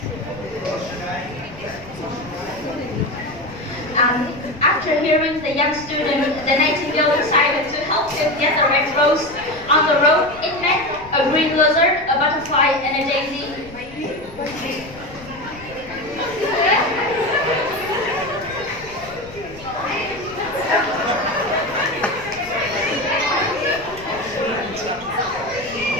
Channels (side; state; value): left; noise; rumble, 19 dB below the sound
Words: Rose should After hearing the young student, the Nightingale decided to help him get the red rose. On the road, it met a green lizard, a butterfly, and a daisy.